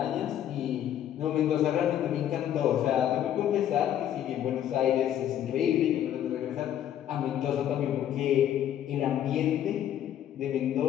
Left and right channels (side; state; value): right; quieter; 10.8 dB